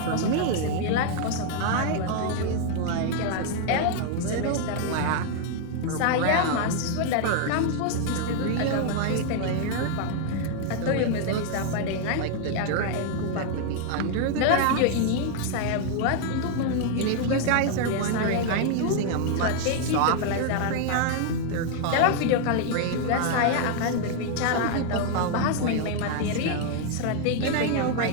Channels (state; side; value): different; both; correlation 0.00